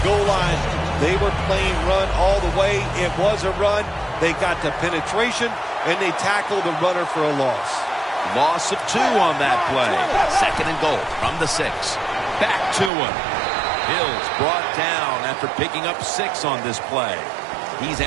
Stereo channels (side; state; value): left; drops out; at 12.9 s